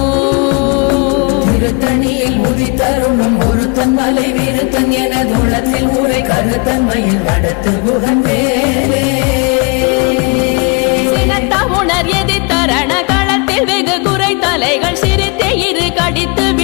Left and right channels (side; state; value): right; quieter; 31.4 dB